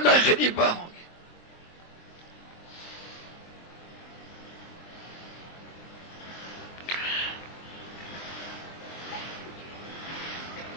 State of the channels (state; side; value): late; right; 24 ms